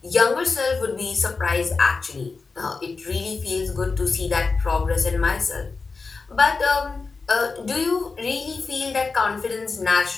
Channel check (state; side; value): quieter; right; 4.3 dB